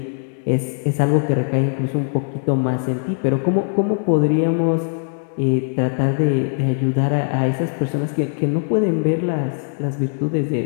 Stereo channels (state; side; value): silent; right; digital silence